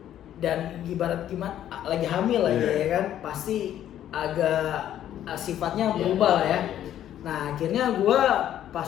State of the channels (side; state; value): right; quieter; 11.3 dB